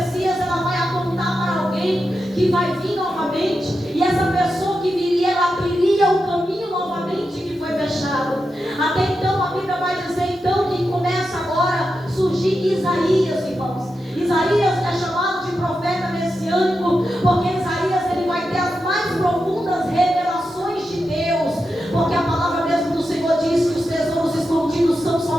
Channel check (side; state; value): both; normal; correlation 0.88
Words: ela vai apontar para alguém que vai vir novamente, e essa pessoa que viria, ela abriria o caminho novamente que foi fechado. Até então a Bíblia vai dizer então que começa agora a surgir Isaías, irmãos. Isaías é chamado de profeta messiânico, porque Isaías ele vai ter as mais profundas revelações de Deus, porque a palavra mesmo do Senhor diz que os tesouros escondidos são